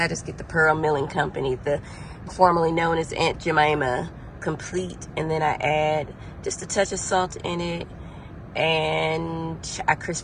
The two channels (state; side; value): identical; both; correlation 1.00